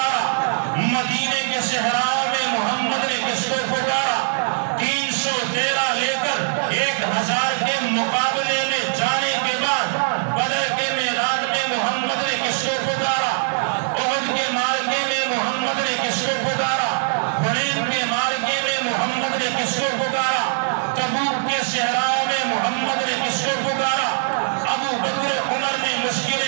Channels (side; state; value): left; silent; digital silence